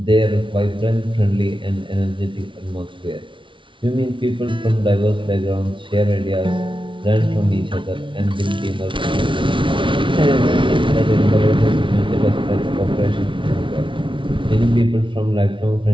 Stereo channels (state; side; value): late; left; 0.25 ms